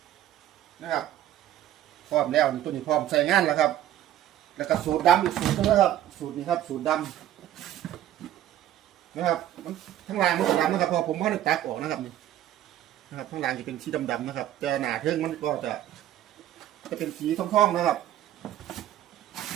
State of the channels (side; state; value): left; quieter; 12.4 dB